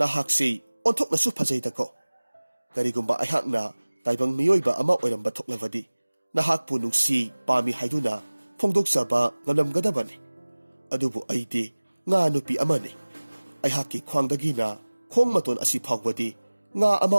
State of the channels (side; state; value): both; inverted; correlation -1.00